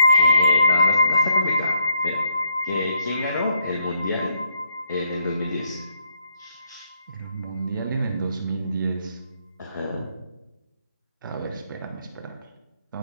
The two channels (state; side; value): inverted; both; correlation -0.76